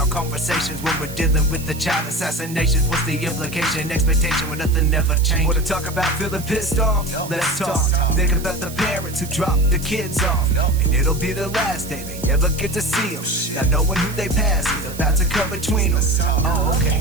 conversations when we're dealing with the child assassinations. What's the implication? Expectation when nothing ever changes. Wanna talk about feeling pissed off? Let's talk. Think about the parents who dropped the kids off, and it'll be the last day they ever get to see them. Not knowing who they pass is about to come between them. Oh, okay,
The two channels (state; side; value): noise; right; hiss, 15 dB below the sound